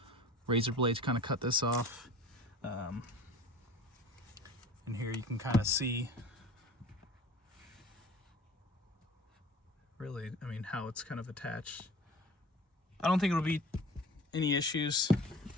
razor blade to kind of cut this off. And here you can kind of see really, I mean, how it's kind of attached. I don't think it'll be any issues. You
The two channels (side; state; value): both; normal; correlation 0.42